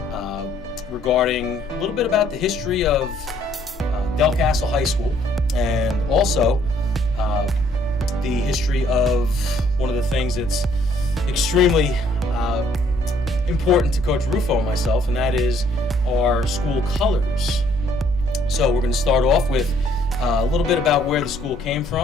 regarding a little bit about the history of Delcastle High School, and also the history of one of the things that's extremely important to Coach Rufo and myself, and that is our school colors. So we're going to start off with a little bit about where the school came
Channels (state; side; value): normal; both; correlation 0.64